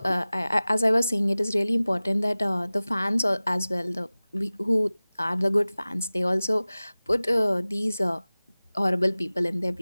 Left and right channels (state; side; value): inverted; both; correlation -0.98